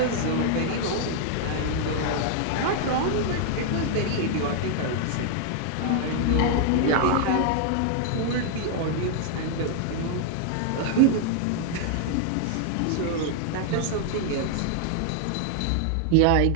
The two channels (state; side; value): different; both; correlation 0.00